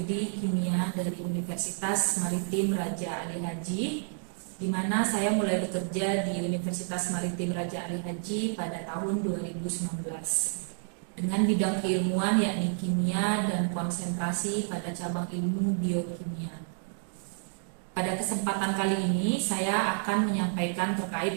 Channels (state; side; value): silent; left; 58 dB below the other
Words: kimia dari Universitas Maritim Raja Ali Haji, di mana saya mulai bekerja di Universitas Maritim Raja Ali Haji pada tahun 2019 dengan bidang keilmuan yakni kimia dan konsentrasi pada cabang ilmu biokimia. Pada kesempatan kali ini saya akan menyampaikan